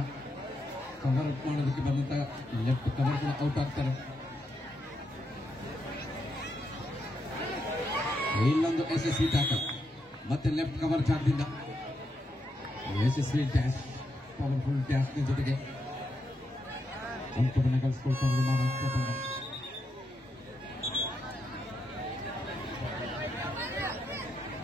ಕವರ್ ಅಪ್ ಮಾಡೋದಕ್ಕೆ ಬಂದಂತ ಲೆಫ್ಟ್ ಕವರ್ ಕೂಡ ಔಟ್ ಆಗ್ತಾರೆ. ಇಲ್ಲೊಂದು ಯಶಸ್ವಿ ಟ್ಯಾಕಲ್, ಮತ್ತೆ ಲೆಫ್ಟ್ ಕವರ್ ಜಾಗದಿಂದ ಯಶಸ್ವಿ ಡ್ಯಾಶ್, ಪವರ್ಫುಲ್ ಡ್ಯಾಶ್ ಜೊತೆಗೆ ಅಂಕವನ್ನು ಗಳಿಸಿಕೊಳ್ತಾರೆ ಮಹಾರಾಷ್ಟ್ರ ತಂಡ.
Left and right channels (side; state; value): both; normal; correlation 0.82